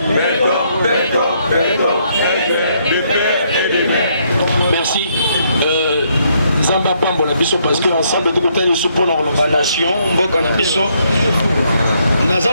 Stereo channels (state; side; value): inverted; both; correlation -0.72